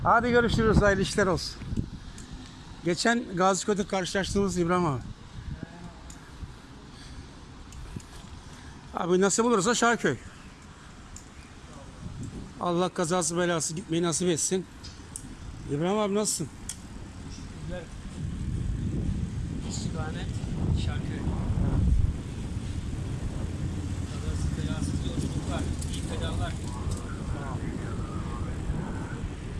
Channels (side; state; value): both; identical; correlation 1.00